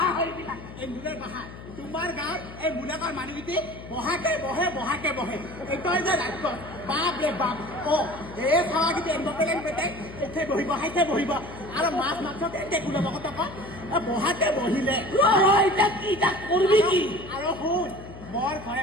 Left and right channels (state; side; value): noise; left; hum, 14 dB below the sound